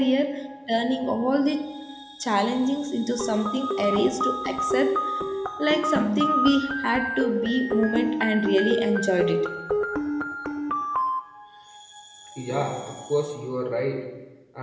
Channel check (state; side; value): identical; both; correlation 1.00